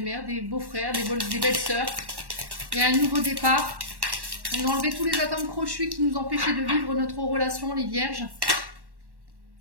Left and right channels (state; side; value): late; left; 1.1 ms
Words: des beaux-frères, des belles-sœurs. Il y a un nouveau départ. On a enlevé tous les atomes crochus qui nous empêchaient de vivre notre relation, les vierges.